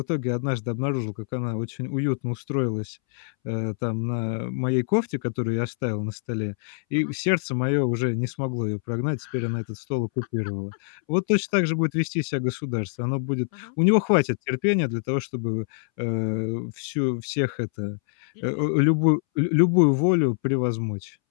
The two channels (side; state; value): right; silent; 62 dB below the other